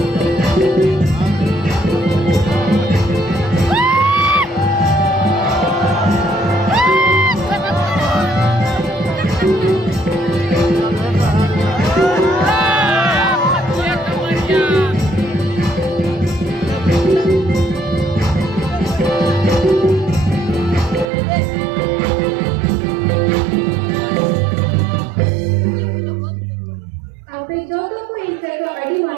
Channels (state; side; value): drops out; left; at 21.1 s